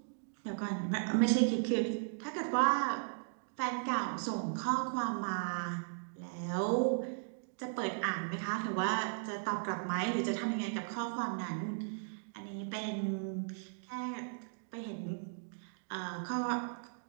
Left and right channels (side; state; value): left; silent; digital silence